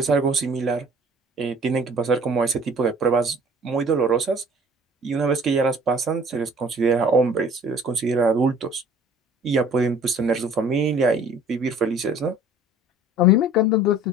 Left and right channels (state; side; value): normal; both; correlation 0.50